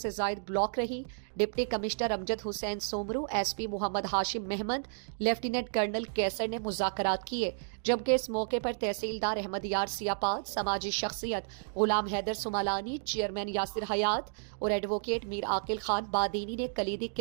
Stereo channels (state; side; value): silent; left; digital silence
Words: زائد بلاک رہی۔ ڈپٹی کمشنر امجد حسین سومرو، ایس پی محمد ہاشم محمد، لیفٹیننٹ کرنل کیسر نے مذاکرات کیے، جبکہ اس موقع پر تحصیلدار احمد یار سیاپاد، سماجی شخصیت غلام حیدر سمالانی، چیئرمین یاسر حیات اور ایڈوکیٹ میر عاقل خان بادینی نے کلیدی